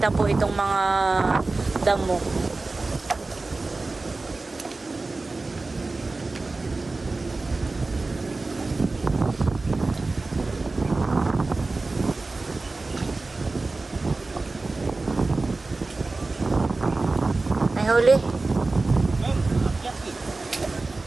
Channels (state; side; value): quieter; left; 3.5 dB